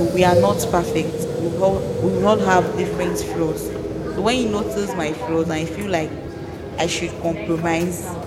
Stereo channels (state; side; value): identical; both; correlation 1.00